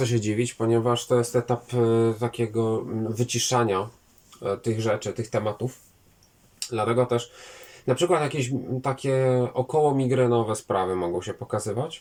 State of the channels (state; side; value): identical; both; correlation 1.00